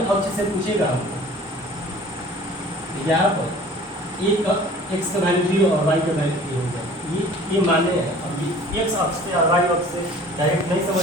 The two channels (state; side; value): normal; both; correlation 0.47